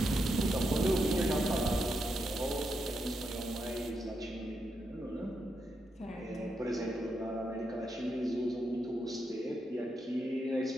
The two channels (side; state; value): both; normal; correlation 0.83